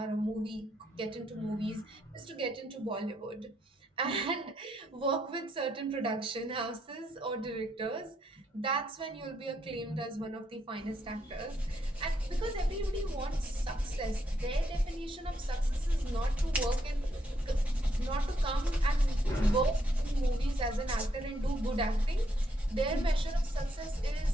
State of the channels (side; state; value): both; normal; correlation 0.76